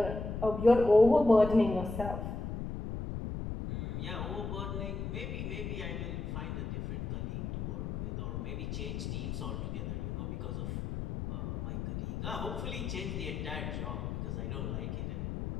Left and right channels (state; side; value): noise; left; rumble, 4 dB below the sound